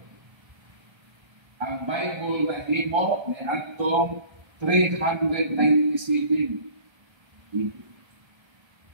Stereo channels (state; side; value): late; left; 1.3 ms